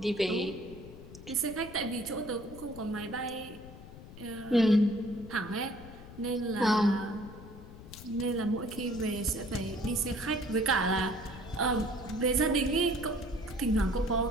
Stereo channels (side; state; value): left; noise; rumble, 16 dB below the sound